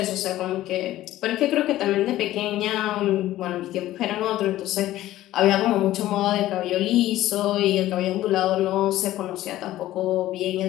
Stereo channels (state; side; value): quieter; right; 14.8 dB